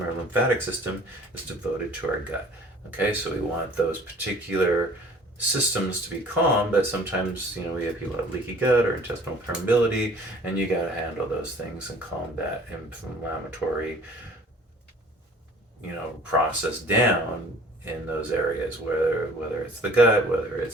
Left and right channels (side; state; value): both; normal; correlation 0.50